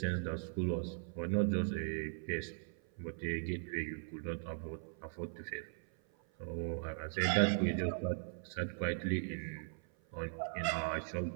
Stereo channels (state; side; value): silent; left; 52 dB below the other